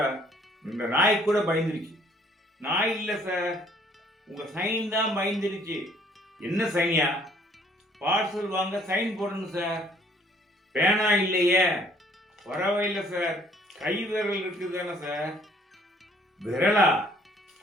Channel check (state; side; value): normal; both; correlation 0.60